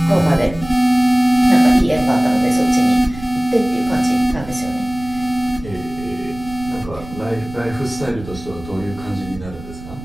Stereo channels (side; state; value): right; noise; rumble, 15 dB below the sound